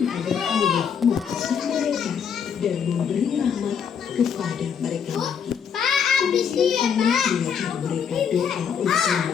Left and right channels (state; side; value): quieter; right; 7.4 dB